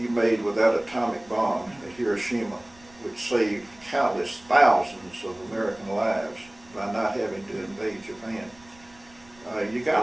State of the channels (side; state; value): right; noise; rumble, 27 dB below the sound